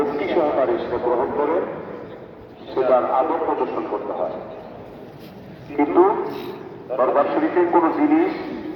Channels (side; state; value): both; identical; correlation 1.00